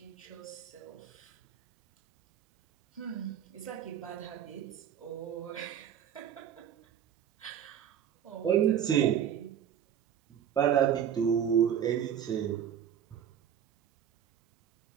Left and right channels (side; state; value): left; quieter; 9.3 dB